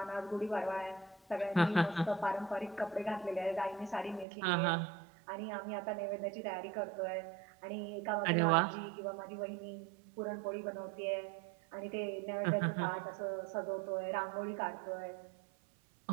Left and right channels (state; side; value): drops out; left; at 4.2 s